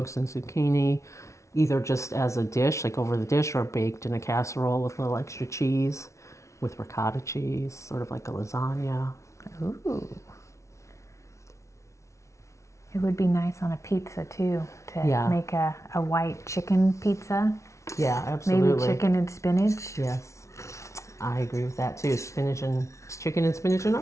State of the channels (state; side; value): late; right; 0.14 ms